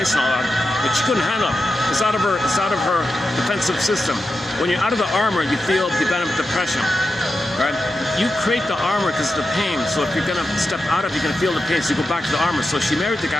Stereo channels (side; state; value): both; normal; correlation 0.90